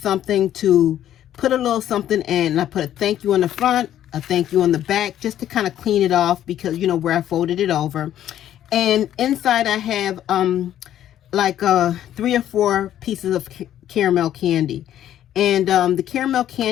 to put a little something in. And I put a thank you on the front, a thank you on the back, just to kind of clean it off, because, you know, where I folded it over. And inside I have like 3 or 4 pieces of caramel candy. And the caramel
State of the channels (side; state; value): right; quieter; 11.5 dB